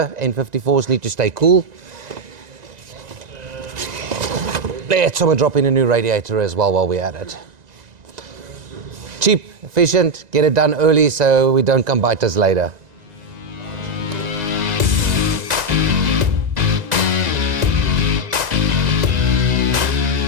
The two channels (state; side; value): late; left; 1.9 ms